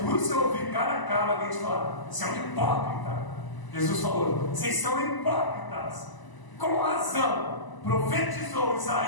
você ouvir cara a cara alguém te falar: você é um hipócrita. Jesus falou: vocês são hipócritas. Com razão profetizou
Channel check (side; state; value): right; late; 1.0 ms